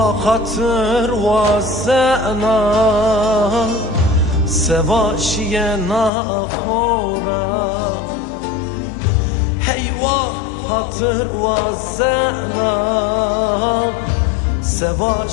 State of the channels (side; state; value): right; drops out; at 6.1 s